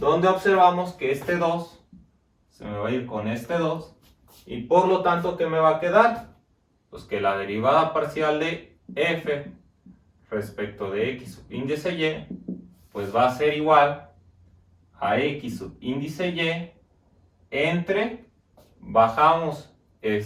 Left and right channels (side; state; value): both; identical; correlation 1.00